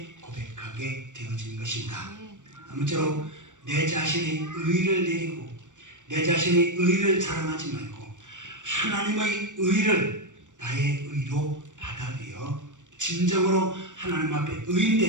고백하게 되어진 것입니다. 아무쪼록 내 자신의 의를 내리고 내 자신의 의를 자랑하지 말고 하나님의 의를 나의 의로 받아들여 진정으로 하나님 앞에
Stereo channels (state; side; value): late; left; 0.86 ms